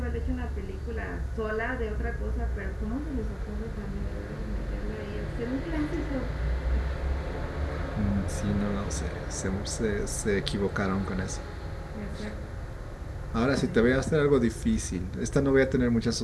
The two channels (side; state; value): both; identical; correlation 1.00